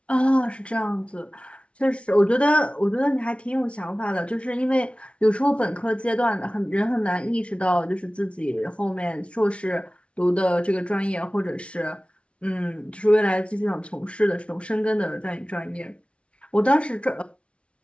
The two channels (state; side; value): late; right; 0.060 ms